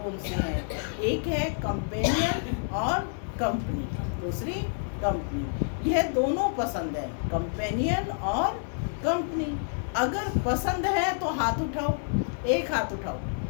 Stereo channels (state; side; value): silent; right; 59 dB below the other